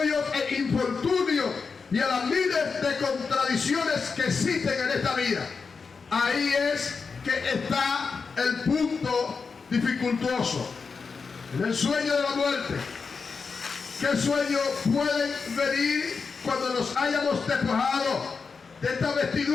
e infortunios y a las miles de contradicciones que existen en esta vida. Ahí es que está el punto dificultoso. En el sueño de la muerte. ¿Qué sueño pueden venir cuando nos hayamos despojado de esta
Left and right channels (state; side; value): quieter; right; 5.1 dB